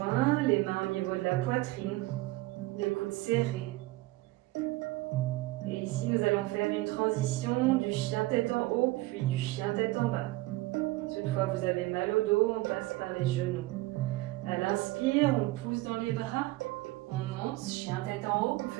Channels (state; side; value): quieter; left; 19.4 dB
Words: les mains au niveau de la poitrine, les coudes serrés. Et ici, nous allons faire une transition du chien tête en haut, puis du chien tête en bas. Toutefois, vous avez mal au dos, on passe par les genoux. À l'inspire, on pousse dans les bras, on monte, chien tête en haut, on